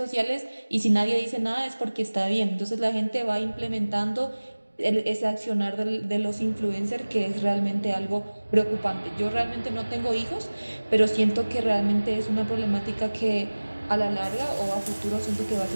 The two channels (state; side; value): inverted; both; correlation -1.00